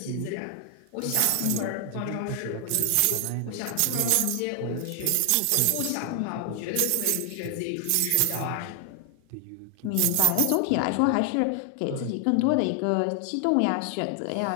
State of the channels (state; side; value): different; both; correlation 0.00